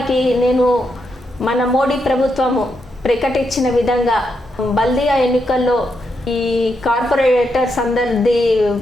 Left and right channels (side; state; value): both; normal; correlation 0.82